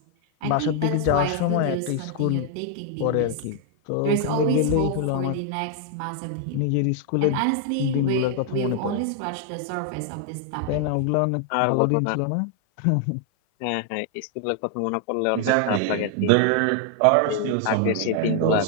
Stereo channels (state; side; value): different; both; correlation 0.00